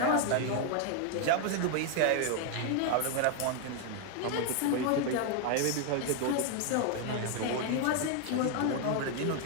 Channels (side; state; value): both; different; correlation 0.01